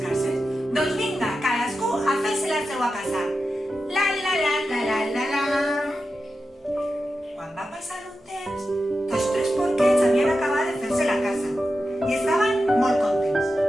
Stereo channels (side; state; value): both; normal; correlation 0.91